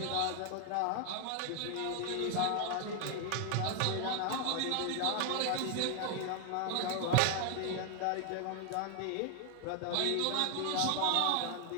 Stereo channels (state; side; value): different; both; correlation 0.00